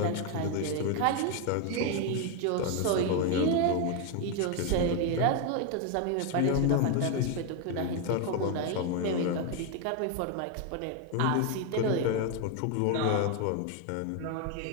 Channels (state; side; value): different; both; correlation 0.01